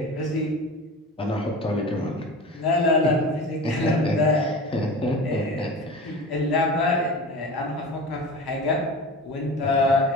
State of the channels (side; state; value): both; normal; correlation 0.33